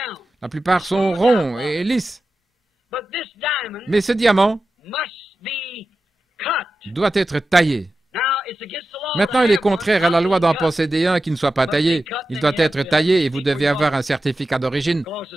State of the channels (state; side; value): normal; both; correlation 0.92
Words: La plupart sont ronds et lisses. Mais ce diamant doit être taillé. Maintenant, il est contraire à la loi d'en posséder un qui ne soit pas taillé. Il doit être taillé et vous devez avoir un certificat d'origine,